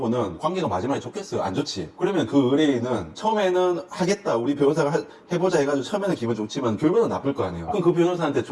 관계가 마지막에 좋겠어요? 안 좋지. 그러면 그 의뢰인은 처음에는 하겠다 우리 변호사가 해보자 해가지고 처음에는 기분 좋지만 결과는 나쁠 거 아니에요. 그럼 그 변호사한테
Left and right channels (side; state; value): both; identical; correlation 1.00